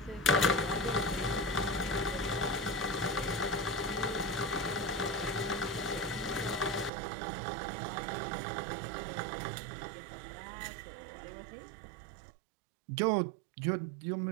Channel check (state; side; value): drops out; left; at 6.9 s